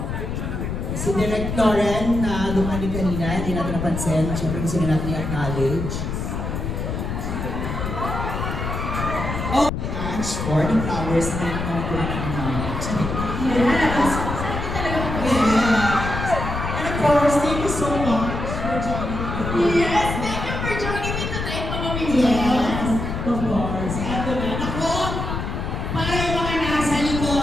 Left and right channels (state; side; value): noise; left; rumble, 4 dB below the sound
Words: Si Direct Lauren na dumani kanina, hindi natin napansin. Siyempre gusto na natin i-acknowledge. Oh, Ange, for the flowers na acknowledge. Yes! Yes. And of course, thank you so much for joining me. Yes! Thank you for joining me tonight, Mama Mimi. Yes, of course. Eto na. Ako, para yung mga nasa